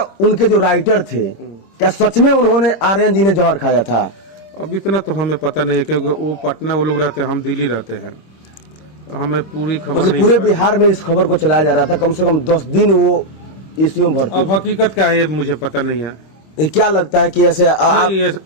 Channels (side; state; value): right; late; 26 ms